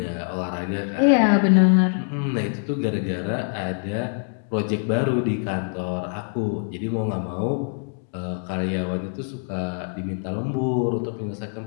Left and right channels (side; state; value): right; silent; 58 dB below the other